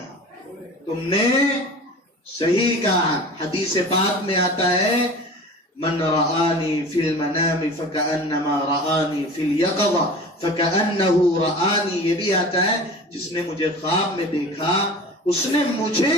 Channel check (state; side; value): normal; both; correlation 0.38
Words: تم نے صحیح کہا. حدیث پاک میں آتا ہے من رآنی فی المنام فکأنما رآنی فی الیقظہ فکأنہ رآنی. یہ بھی آتا ہے جس نے مجھے خواب میں دیکھا اس نے مجھے